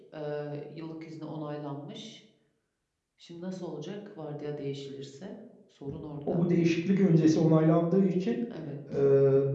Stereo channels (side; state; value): both; identical; correlation 1.00